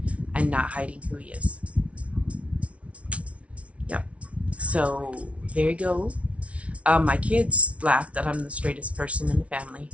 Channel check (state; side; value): late; left; 0.063 ms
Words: and not hiding who he is. Yep. So there you go. My kids laugh that I'm the straightest person in the family